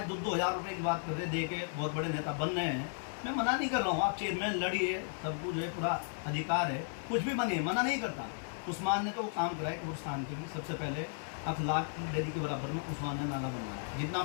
2-2 हज़ार रुपये की बात कर रहे, दे के बहुत बड़े नेता बन रहे हैं, मैं मना नहीं कर रहा हूँ, आप चेयरमैन लड़िए, सबको जो है पूरा अधिकार है, कुछ भी बनिए, मना नहीं करता। उस्मान ने तो वो काम कराया कब्रिस्तान के लिए, सबसे पहले अखलाक डेरी के बराबर में उस्मान ने नाला बनवाया। जितना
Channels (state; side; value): silent; right; digital silence